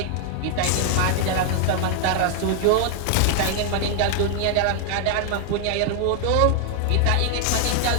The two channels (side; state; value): both; different; correlation 0.00